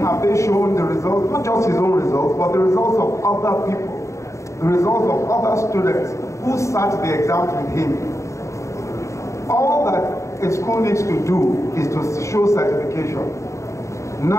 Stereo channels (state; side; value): late; right; 0.14 ms